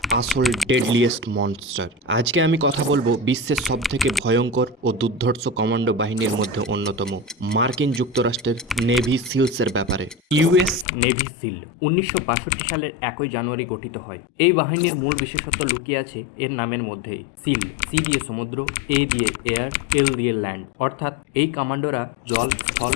আসল ডেডলিয়েস্ট মনস্টার। আজকে আমি কথা বলবো বিশ্বের সবথেকে ভয়ঙ্কর ও দুর্ধর্ষ কমান্ডো বাহিনীর মধ্যে অন্যতম মার্কিন যুক্তরাষ্ট্রের নেভি সিলসের ব্যাপারে। ইউএস নেভি সিল 1962 সালের 1 জানুয়ারি গঠিত হয়। এই বাহিনীর মূল বিশেষত্ব লুকিয়ে আছে এর নামের মধ্যেই। সিল, সি দিয়ে সমুদ্র, এ দিয়ে এয়ার, এল দিয়ে ল্যান্ড, অর্থাৎ এই কমান্ডোরা জল, স্থল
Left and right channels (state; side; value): drops out; right; at 10.9 s